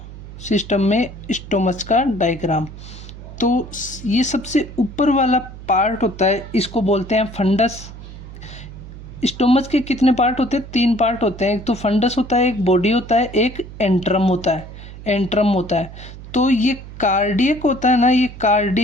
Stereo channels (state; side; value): noise; right; hum, 14 dB below the sound